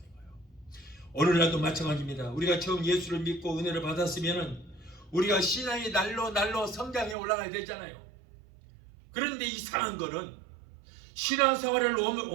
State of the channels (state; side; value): drops out; left; at 7.2 s